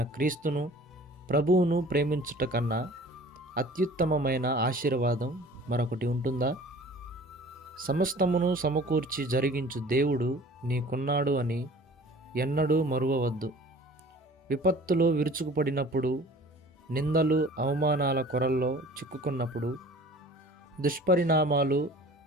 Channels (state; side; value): normal; both; correlation 0.47